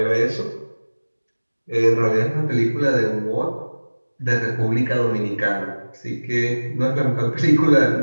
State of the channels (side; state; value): both; inverted; correlation -1.00